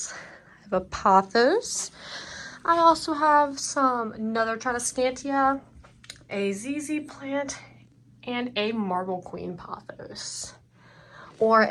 I have a pothos. I also have another Tradescantia, a ZZ plant, and a Marble Queen pothos. Or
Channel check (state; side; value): identical; both; correlation 1.00